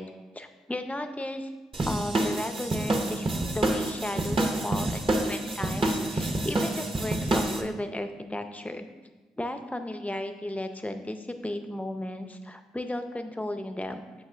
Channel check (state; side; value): normal; both; correlation 0.85